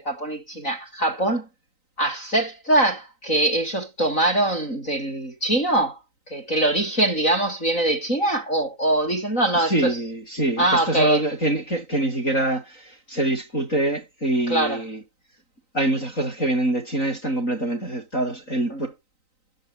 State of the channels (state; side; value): late; right; 3.9 ms